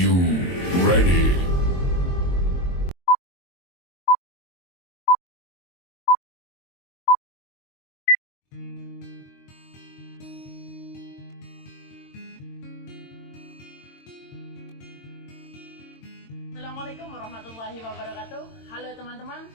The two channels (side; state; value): right; late; 22 ms